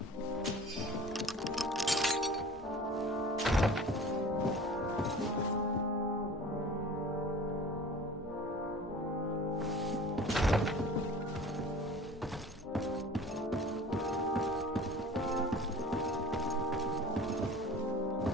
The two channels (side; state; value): both; normal; correlation 0.41